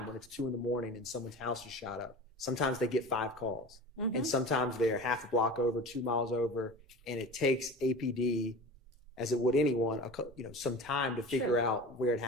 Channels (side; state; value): both; normal; correlation 0.35